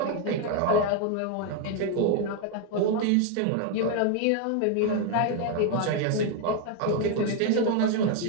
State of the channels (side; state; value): both; different; correlation 0.01